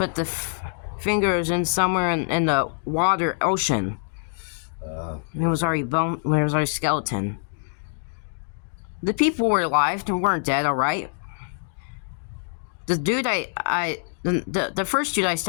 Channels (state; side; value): silent; right; digital silence